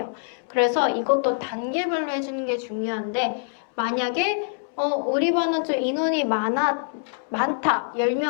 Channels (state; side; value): silent; right; 62 dB below the other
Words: 그래서 이것도 단계별로 해주는 게 중요한데 만약에 우리 반은 좀 인원이 많다,